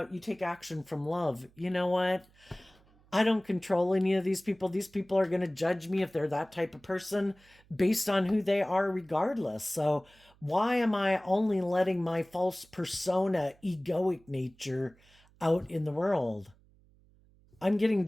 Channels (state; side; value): noise; right; hum, 30 dB below the sound